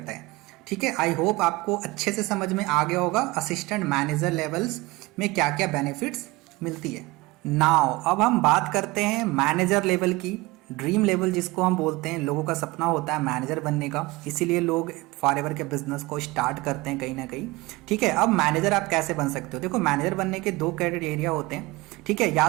है, ठीक है। आई होप आपको अच्छे से समझ में आ गया होगा असिस्टेंट मैनेजर लेवल्स में क्या क्या बेनिफिट्स मिलती है। नाउ अब हम बात करते हैं मैनेजर लेवल की, ड्रीम लेवल जिसको हम बोलते हैं। लोगों का सपना होता है मैनेजर बनने का, इसीलिए लोग फॉरएवर के बिजनेस को स्टार्ट करते हैं कहीं ना कहीं, ठीक है। अब मैनेजर आप कैसे बन सकते हो, देखो मैनेजर बनने के 2 क्राइटेरिया होते हैं, ठीक है। या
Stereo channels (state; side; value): quieter; left; 21.9 dB